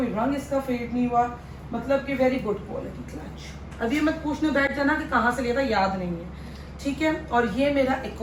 रंग इसका फेड नहीं हुआ, मतलब कि वेरी गुड क्वालिटी क्लच। अभी मत पूछने बैठ जाना कि कहाँ से लिया था, याद नहीं है, ठीक है। और ये मेरा एक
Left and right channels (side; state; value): both; identical; correlation 1.00